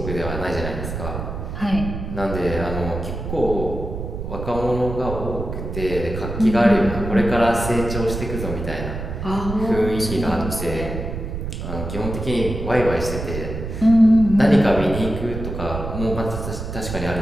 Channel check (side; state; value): right; noise; rumble, 6 dB below the sound